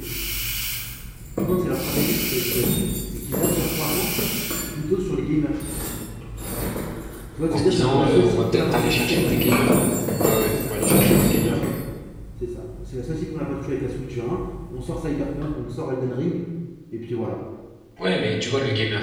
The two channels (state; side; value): identical; both; correlation 1.00